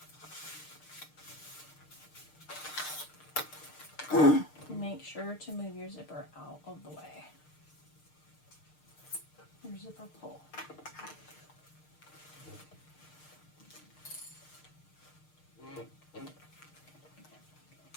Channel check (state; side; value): late; right; 6.6 ms